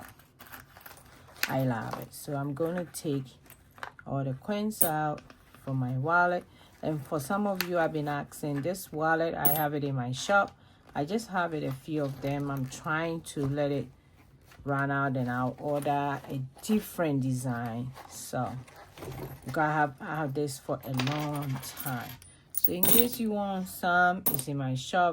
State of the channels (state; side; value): identical; both; correlation 1.00